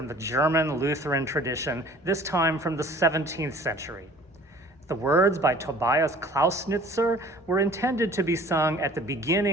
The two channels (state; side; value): normal; both; correlation 0.50